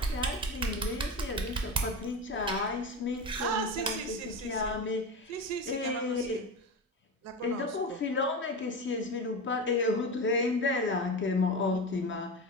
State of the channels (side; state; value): both; normal; correlation 0.23